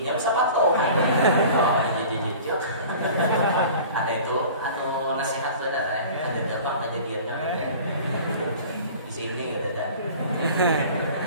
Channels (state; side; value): inverted; both; correlation -0.43